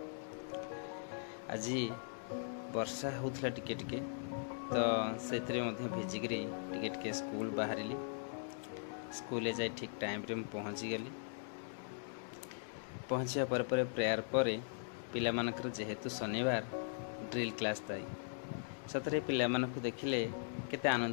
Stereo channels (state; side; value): silent; right; digital silence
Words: आज वर्षा होता टिके टिके तो से भिजिकी टिके टिके स्कूल बाहरी स्कूल जाए ठीक टाइम रे पहुँची गली। पहुँचा पर प्रेयर पर पिला मानकर जेहेतु शनिवार ड्रिल क्लास थाई सतरे पिला मानक देखिले केते